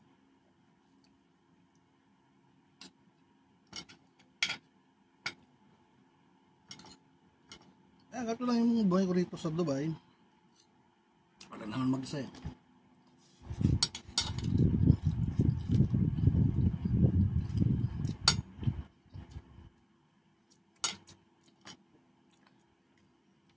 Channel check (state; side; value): identical; both; correlation 1.00